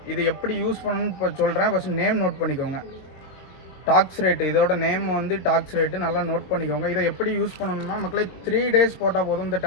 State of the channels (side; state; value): right; late; 22 ms